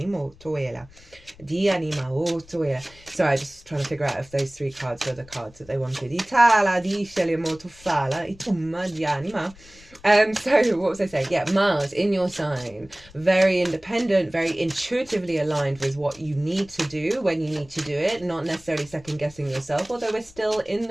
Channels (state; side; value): noise; left; rumble, 24 dB below the sound